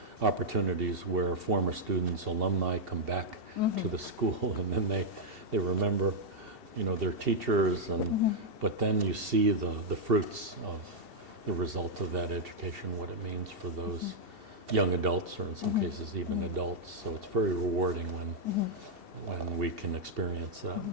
opportunities where former students, alumni come back to the school, and then they remember, their teachers, and but then you see the fruits of the result of that education, what it means for those young adults, or in some cases even adults. So it's very rewarding when we can experience that.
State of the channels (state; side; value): late; left; 2.7 ms